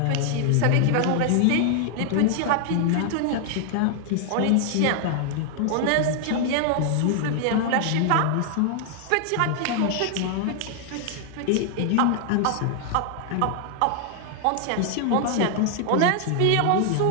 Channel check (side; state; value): both; different; correlation 0.00